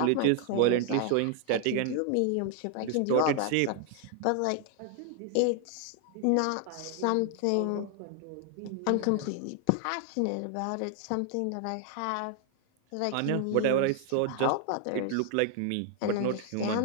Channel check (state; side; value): different; both; correlation 0.00